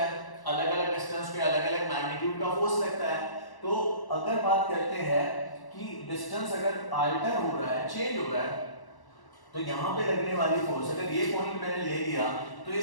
है, अलग-अलग डिस्टेंस पे अलग-अलग मैग्नीट्यूड का फोर्स लगता है। तो अगर बात करते हैं कि डिस्टेंस अगर अल्टर हो रहा है, चेंज हो रहा है, तो यहाँ पे लगने वाली फोर्स, अगर ये पॉइंट मैंने ले लिया तो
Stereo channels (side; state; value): right; late; 1.1 ms